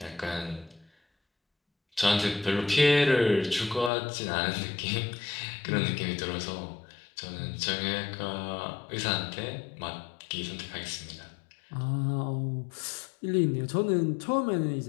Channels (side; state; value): right; drops out; at 3.9 s